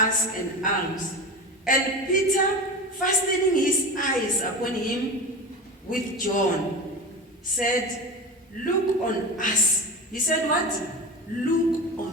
an alms. And Peter, fastening his eyes upon him with John, said, look on us. He said what? Look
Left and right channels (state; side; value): normal; both; correlation 0.27